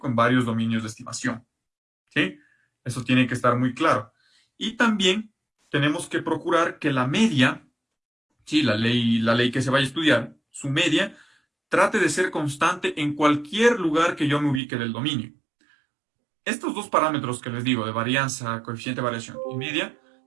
en varios dominios de estimación, ¿sí? Eso tiene que estar muy claro. Y también tenemos que procurar que la media, sí, la ley que se vaya a estudiar, su media, trate de ser constante en cualquier lugar que yo me ubique del dominio. Estos dos parámetros que les digo, de varianza, coeficiente de variación y media,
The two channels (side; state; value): left; drops out; at 14.6 s